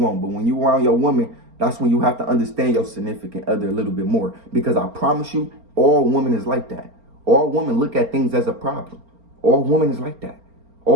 But when you around your woman, that's when you have to understand your significant other a little bit more. Because I promise you, all women is like that. All women look at things as a problem. All women is like that.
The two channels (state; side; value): late; left; 4.4 ms